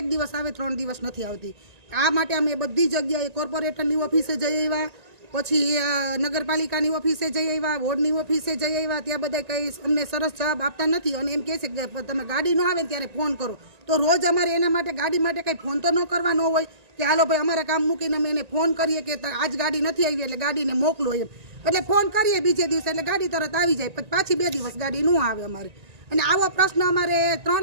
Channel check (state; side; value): late; left; 1.9 ms